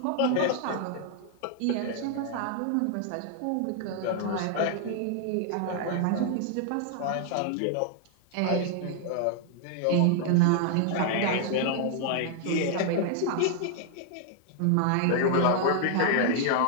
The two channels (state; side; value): different; both; correlation 0.00